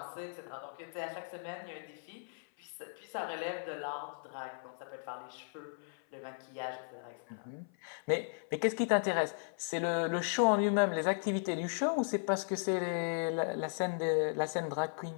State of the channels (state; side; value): silent; right; 54 dB below the other